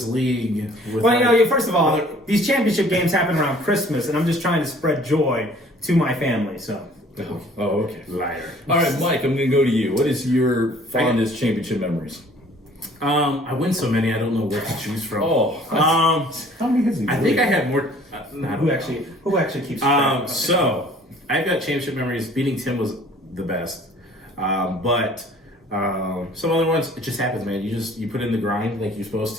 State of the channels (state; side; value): normal; both; correlation 0.53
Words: league with. Well, first of all, these championship games happen around Christmas, and I'm just trying to spread joy to my family, so. Oh, okay. Liar. All right, Mike, I'm going to go to you. What is your fondest championship memories? I win so many, I don't know what to choose from. How many has he I think I had more. Who actually keeps track? So I've got championship memories. Beating Tim was the best, but some other ones, it just happens, man. You put in the grind like you're supposed